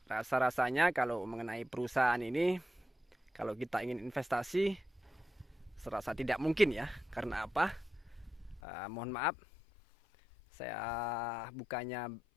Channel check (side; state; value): right; drops out; at 8.6 s